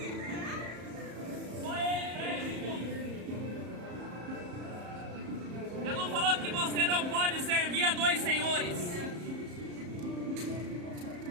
Só Ele preste culto. Jesus falou que você não pode servir a dois senhores.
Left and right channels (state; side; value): late; left; 34 ms